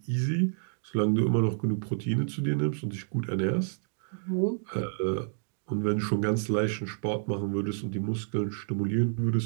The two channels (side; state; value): left; silent; digital silence